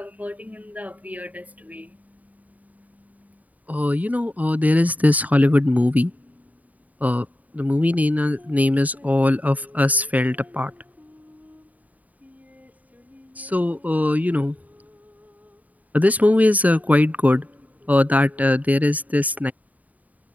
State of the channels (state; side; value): late; left; 0.074 ms